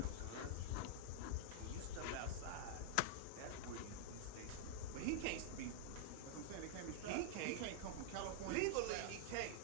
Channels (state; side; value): different; both; correlation -0.01